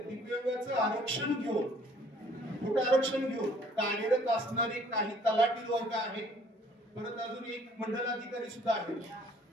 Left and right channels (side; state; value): both; normal; correlation 0.58